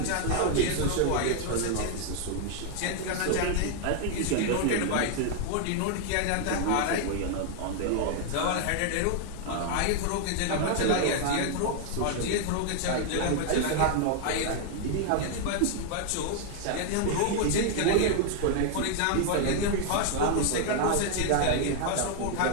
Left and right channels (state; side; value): different; both; correlation 0.00